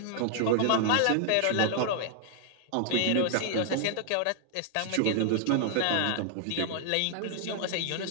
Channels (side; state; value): both; different; correlation 0.00